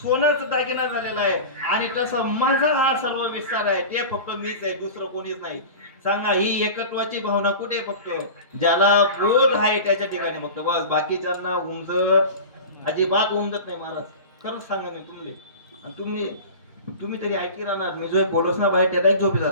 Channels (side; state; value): both; inverted; correlation -0.33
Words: सोनच दागिना झालेला आहे, आणि तसं माझा हा सर्व विस्तार आहे. ते फक्त मीच आहे, दुसरं कोणीच नाही. सांगा, ही एकत्वाची भावना कुठे? फक्त ज्याला बोध आहे त्याच्या ठिकाणी फक्त, बस. बाकीच्यांना अजिबात उमजत नाही महाराज. खरंच सांगा मी तुम्ही, आणि तुम्ही तरी ऐकी राहणार. मी जो बोलस ना बाहेर त्याला झोपी